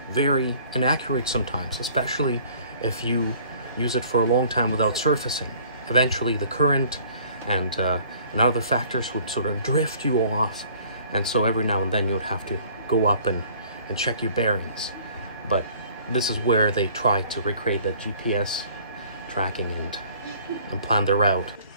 very inaccurate sometimes, especially if you use it for a long time without surfacing. Eventually the current and other factors would sort of drift you off, and so every now and then you would have to go up and check your bearings. But this is where they try to recreate that GPS tracking and plan their route.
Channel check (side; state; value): both; inverted; correlation -0.54